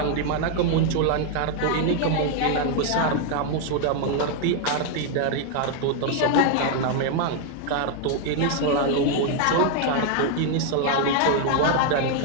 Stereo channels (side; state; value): both; different; correlation 0.00